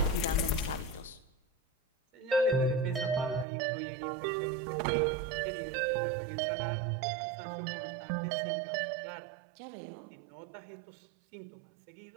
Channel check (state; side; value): drops out; left; at 3.5 s